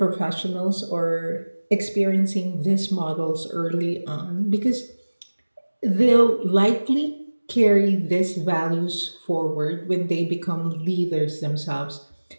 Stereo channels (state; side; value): inverted; both; correlation -1.00